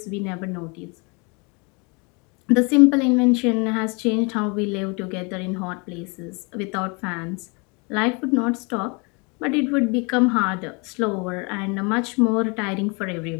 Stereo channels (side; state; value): right; quieter; 31.2 dB